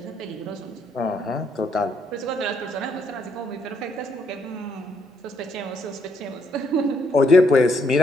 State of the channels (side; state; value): both; normal; correlation 0.73